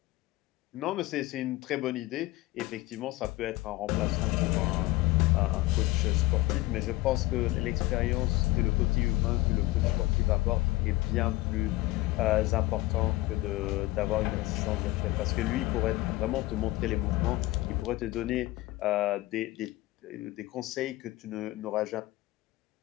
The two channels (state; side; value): quieter; right; 18.9 dB